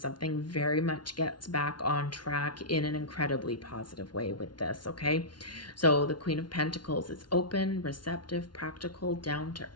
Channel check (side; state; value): right; late; 0.70 ms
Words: very much gets back on track in an incredibly positive way with this. Okay, so the Queen of Pentacles is open, receptive, practical, down to